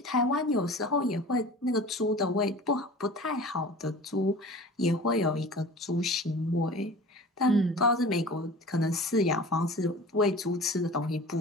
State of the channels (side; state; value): both; normal; correlation 0.39